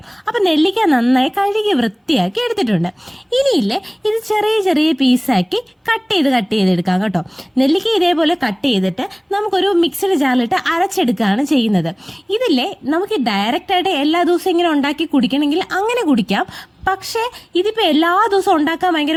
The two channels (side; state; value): both; identical; correlation 1.00